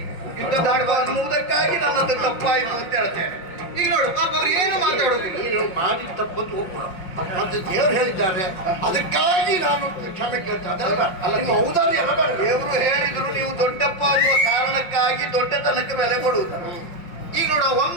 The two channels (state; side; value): late; right; 5.6 ms